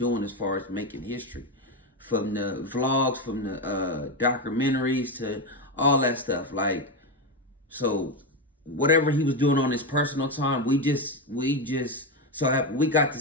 as far as making history. From the vlogs, from the documentaries to all that stuff. Like, so whatever he was doing on his personal time, we got to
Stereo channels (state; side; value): normal; both; correlation 0.11